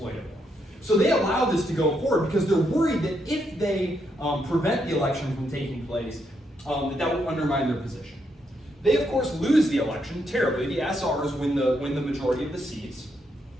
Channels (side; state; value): both; normal; correlation 0.78